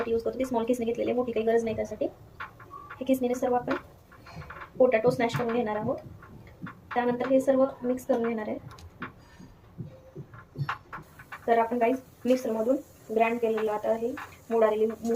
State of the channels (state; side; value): identical; both; correlation 1.00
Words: यूज करतो ती स्मॉल किसणी घेतलेली आहे, मोठी काही गरज नाही त्यासाठी. हे किसणीने सर्व आपण पोटॅटो स्मॅश करून घेणार आहोत. त्यानंतर हे सर्व मिक्स करून घेणार आहे. तर आपण गाईस मिक्सरमधून ग्राइंड केलेलं आता हे मोड आलेली